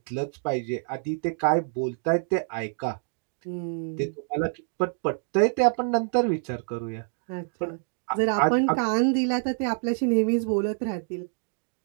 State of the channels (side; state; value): left; silent; digital silence